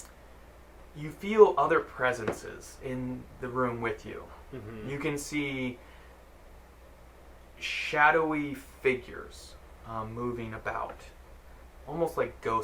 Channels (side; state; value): both; identical; correlation 1.00